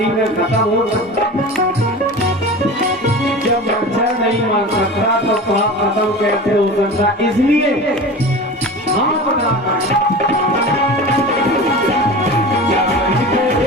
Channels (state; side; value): normal; both; correlation 0.33